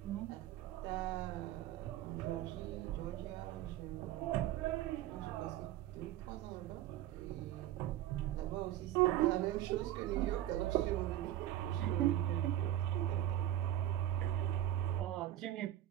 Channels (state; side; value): quieter; left; 13.2 dB